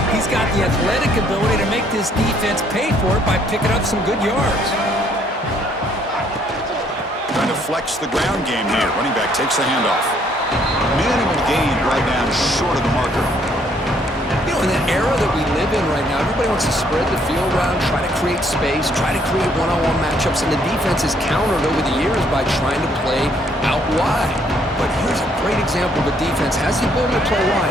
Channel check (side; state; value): both; normal; correlation 0.66